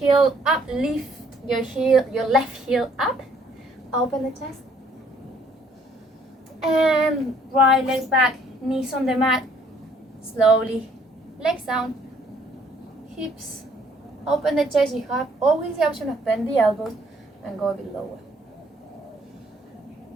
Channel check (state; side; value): normal; both; correlation 0.62